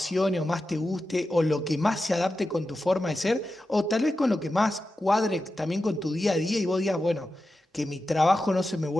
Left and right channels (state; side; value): normal; both; correlation 0.91